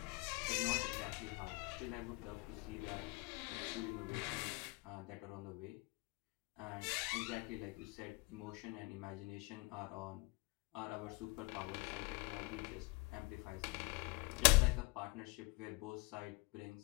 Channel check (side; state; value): right; quieter; 26.6 dB